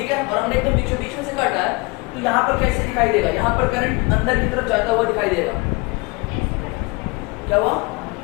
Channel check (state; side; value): quieter; right; 26.1 dB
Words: है। और हमने एकदम बीचों बीच में से काटा है, तो यहाँ पर कैसे दिखाई देगा, यहाँ पर करंट अंदर की तरफ जाता हुआ दिखाई देगा। क्या हुआ,